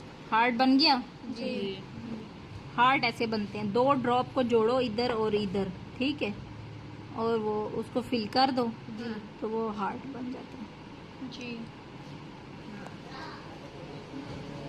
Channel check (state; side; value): identical; both; correlation 1.00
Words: हार्ट बन गया। जी। हार्ट ऐसे बनते हैं, दो ड्रॉप को जोड़ो इधर और इधर, ठीक है, और वो उसको फिल कर दो तो वो हार्ट बन जाता है। जी।